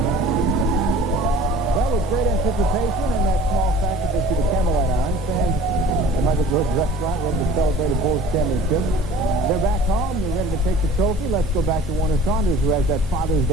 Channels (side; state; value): both; normal; correlation 0.45